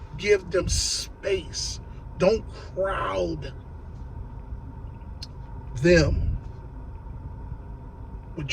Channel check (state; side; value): identical; both; correlation 1.00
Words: Give them space. Don't crowd them